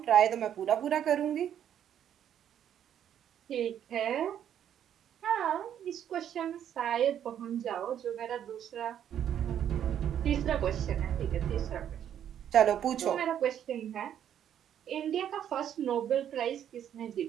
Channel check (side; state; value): left; quieter; 9.8 dB